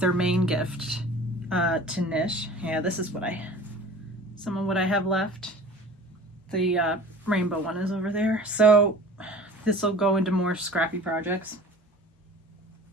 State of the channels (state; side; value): normal; both; correlation 0.43